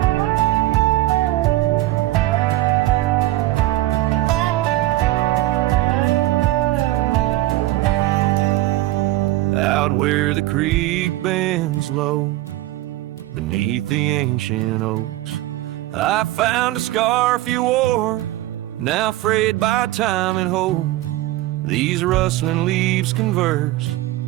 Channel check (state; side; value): quieter; left; 16.7 dB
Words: Where the creek bends low beneath the ancient oaks, I found a scarf you wore, now frayed by time and hope. These rustling leaves converse